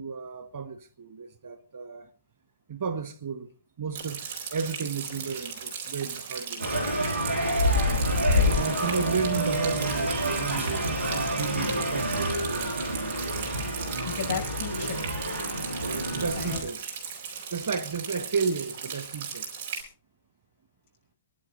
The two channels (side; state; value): both; inverted; correlation -0.52